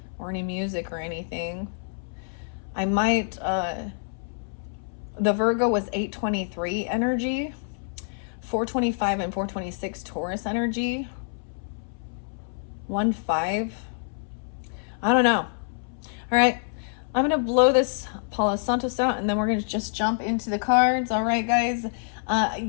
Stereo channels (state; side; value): silent; right; 60 dB below the other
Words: or any music or anything. I might, the Virgo was 823 energy. 425 and 426 Taurus energy. 1-5. I don't know. All right. I'm going to blow this Palo Santos out and then we're going to just jump into the cards. All right, guys.